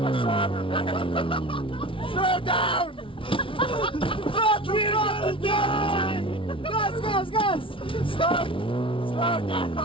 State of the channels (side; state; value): right; late; 0.25 ms